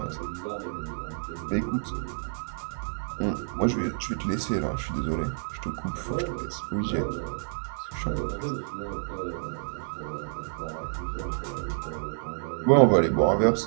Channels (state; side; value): silent; left; digital silence